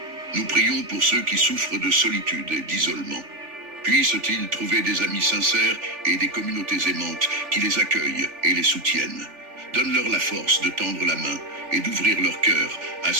Nous prions pour ceux qui souffrent de solitude et d'isolement. Puissent-ils trouver des amis sincères et des communautés aimantes qui les accueillent et les soutiennent. Donne-leur la force de tendre la main et d'ouvrir leur cœur à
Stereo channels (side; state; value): left; late; 3.4 ms